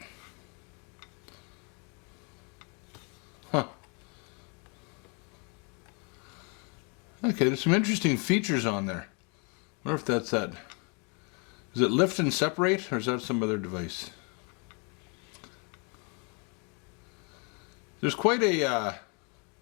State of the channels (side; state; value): right; quieter; 34.7 dB